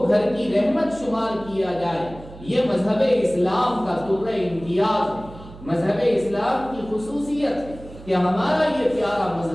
گھر کی رحمت شمار کیا جائے. یہ مذہب اسلام کا طرز امتیاز ہے, مذہب اسلام کی خصوصیت ہے کہ ہمارا یہ پیارا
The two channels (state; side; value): noise; right; hum, 17 dB below the sound